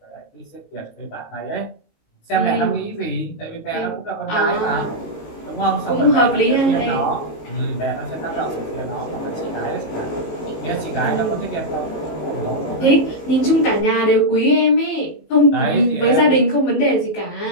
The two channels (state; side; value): late; right; 19 ms